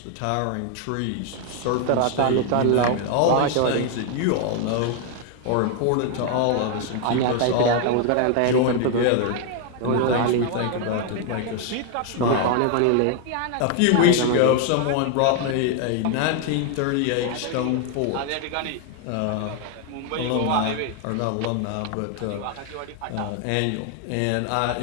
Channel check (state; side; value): different; both; correlation 0.00